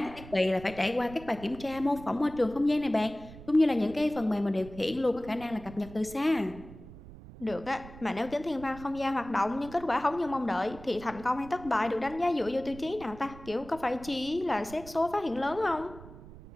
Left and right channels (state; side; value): noise; right; rumble, 17 dB below the sound